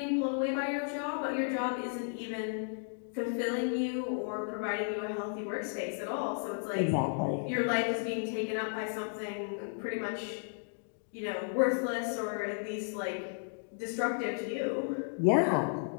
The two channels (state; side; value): silent; right; digital silence